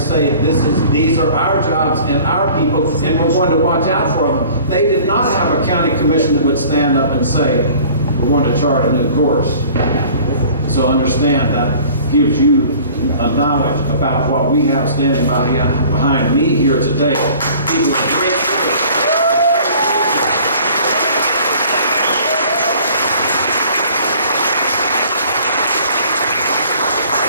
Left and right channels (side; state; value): both; inverted; correlation -0.49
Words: these are our jobs and our people, and we're going to watch out for them. They did not have a county commission that would stand up and say, we're going to chart a new course. So understand that gives you a knowledge about what we have standing behind me here today. People are great.